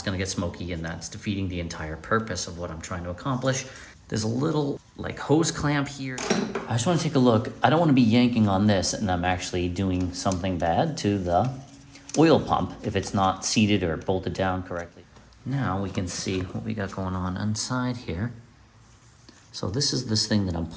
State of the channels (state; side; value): identical; both; correlation 1.00